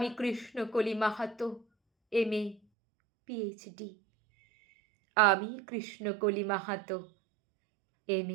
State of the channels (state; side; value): drops out; left; at 2.6 s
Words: কৃষ্ণকলি মাহাতো, MA PhD। আমি কৃষ্ণকলি মাহাতো,